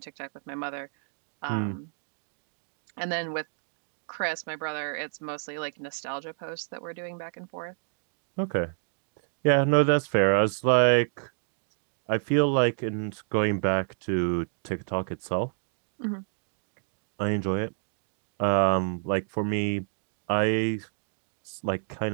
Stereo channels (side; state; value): left; silent; digital silence